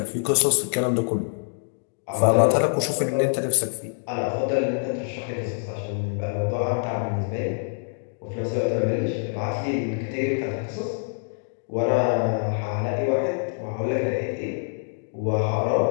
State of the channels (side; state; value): right; silent; 62 dB below the other